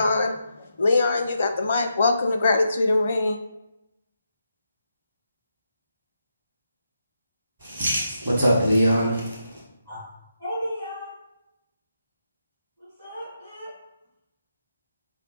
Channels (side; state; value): both; inverted; correlation -0.84